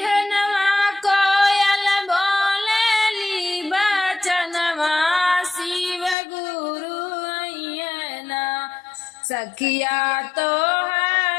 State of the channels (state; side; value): drops out; right; at 6.2 s